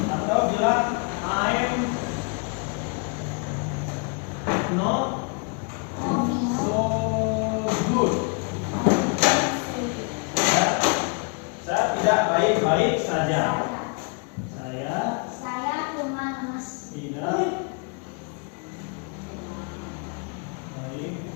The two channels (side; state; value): right; quieter; 36.6 dB